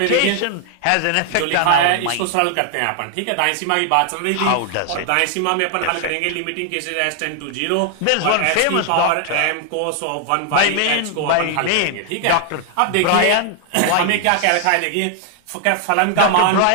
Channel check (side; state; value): both; different; correlation 0.00